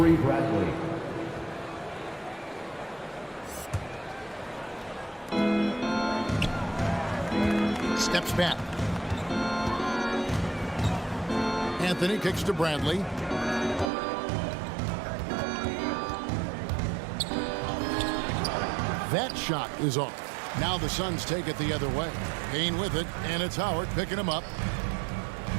Bradley. Steps back. Anthony kicks to Bradley. That shot is off. Now the Suns take it the other way. Payne with it, and it's Howard picking him up.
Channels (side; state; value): left; drops out; at 13.9 s